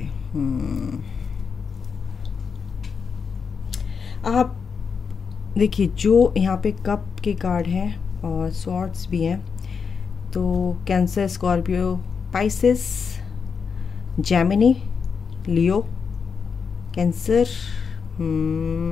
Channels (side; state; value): right; quieter; 5.9 dB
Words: आप देखिए, जो यहाँ पे कप के कार्ड हैं और स्वॉर्ड्स भी हैं, तो कैंसर, स्कॉर्पियो, पाइसेस, जेमिनी, लियो। कैंसर,